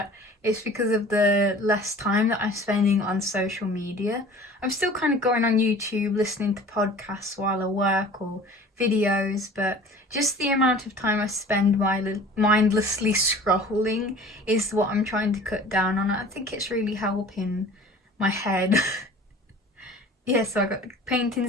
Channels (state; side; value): normal; both; correlation 0.44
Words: it's because of the less time that I'm spending on social media. I'm still kind of going on YouTube, listening to podcasts while I work or videos, but just the amount of time I spend mindlessly scrolling is what I'm trying to cut down on. I think it's really helping my head. Yeah, so I got the